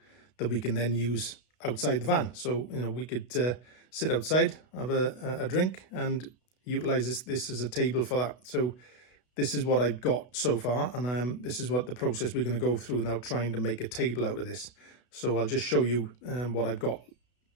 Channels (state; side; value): late; right; 32 ms